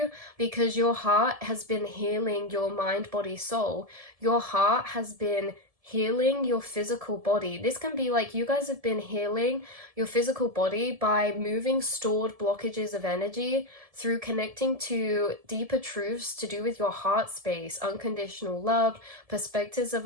because your heart has been healing your mind, body, soul. Your heart has been healing your physical body. This can be like you guys have been healing your physical body by moving stored blockages of energy through connecting to deeper truths to do with your heart space, unconditional love, perspectives of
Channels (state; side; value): late; left; 1.7 ms